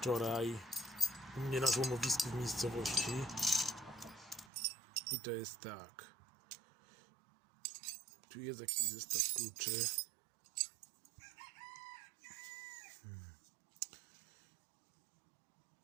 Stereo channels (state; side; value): drops out; left; at 4.5 s